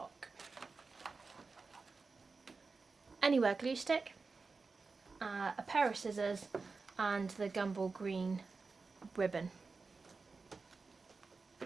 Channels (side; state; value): left; quieter; 4.3 dB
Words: Anywhere glue stick, a pair of scissors, and the Gumball Green ribbon.